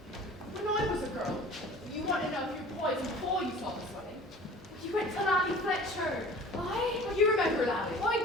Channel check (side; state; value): both; normal; correlation 0.44